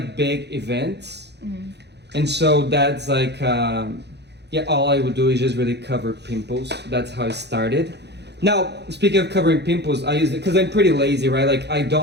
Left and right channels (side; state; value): left; late; 0.49 ms